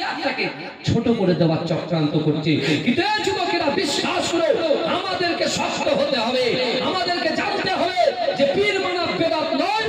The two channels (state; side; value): identical; both; correlation 1.00